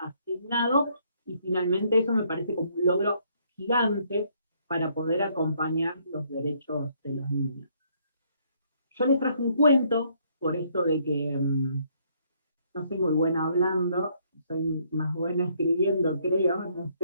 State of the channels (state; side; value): inverted; both; correlation -0.68